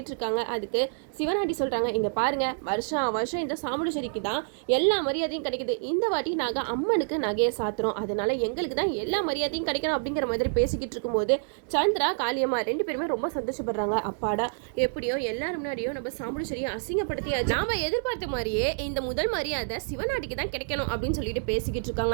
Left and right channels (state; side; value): silent; left; digital silence